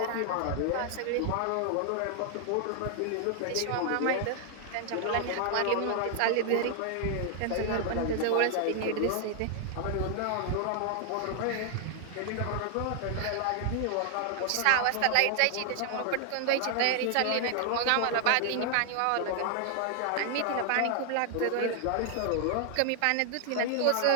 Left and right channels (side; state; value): both; different; correlation 0.00